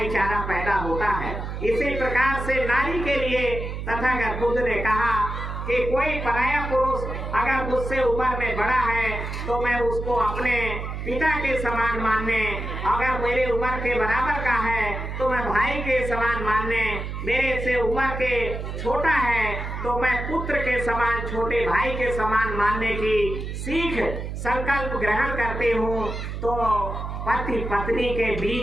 पैदा होता है। इसी प्रकार से नारी के लिए तथागत बुद्ध ने कहा कि कोई पराया पुरुष अगर मुझसे उम्र में बड़ा है तो मैं उसको अपने पिता के समान मानने, अगर मेरे उम्र के बराबर का है तो मैं भाई के समान मानने, मेरे से उम्र के छोटा है तो मैं पुत्र के समान, छोटे भाई के समान मानने की सीख संकल्प ग्रहण करती हूँ तो पति पत्नी के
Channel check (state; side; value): noise; right; hum, 6 dB below the sound